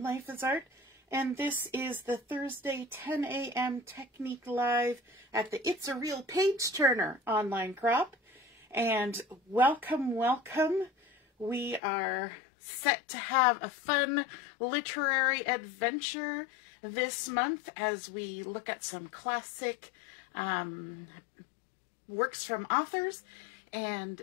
Life is Art, and this is the Thursday 10 a.m. Technique Live at the It's a Real Page Turner online crop. And welcome, welcome. We are set to have a fun literary adventure this month as we look at some classic works from authors and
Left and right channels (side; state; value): right; drops out; at 11.8 s